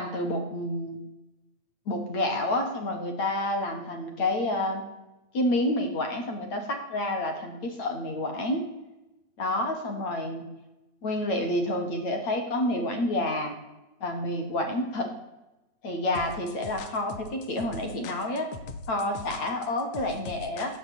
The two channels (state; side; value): late; right; 8.9 ms